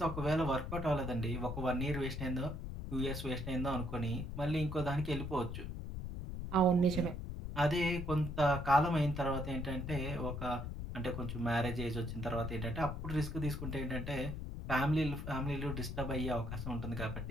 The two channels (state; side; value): noise; left; rumble, 6 dB below the sound